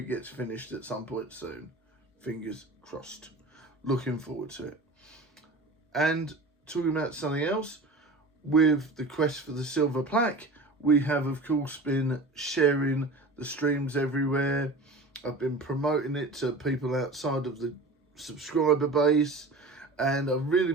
gets finished at some point soon. Fingers crossed. Looking forward to it. And talking about something else, with the quest for the Silver Plaque, we have, of course, been sharing the streams everywhere. I've been promoting it to people outside of the subscriber base, and I've really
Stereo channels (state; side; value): quieter; left; 3.0 dB